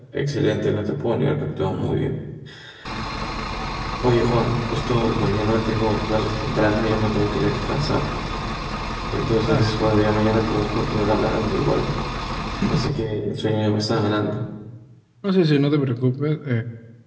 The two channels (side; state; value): both; identical; correlation 1.00